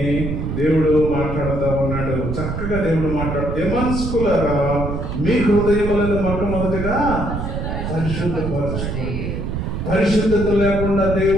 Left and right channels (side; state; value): right; noise; rumble, 4 dB below the sound